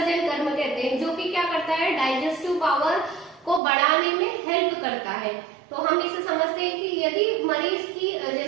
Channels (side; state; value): left; drops out; at 3.6 s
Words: कर्म कहते हैं, जो कि क्या करता है, डाइजेस्टिव पावर को बढ़ाने में हेल्प करता है। तो हम इसे समझते हैं कि यदि मरीज की